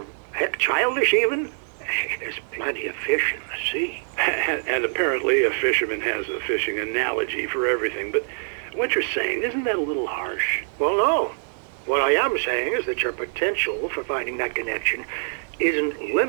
heck, childish even? There's plenty of fish in the sea. And apparently a fisherman has a fishing analogy for everything, but what you're saying, isn't that a little harsh? Well, no. What I am saying is that your potential for finding that connection isn't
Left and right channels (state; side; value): silent; left; digital silence